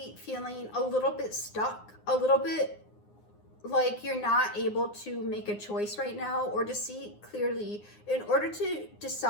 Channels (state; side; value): late; right; 9.7 ms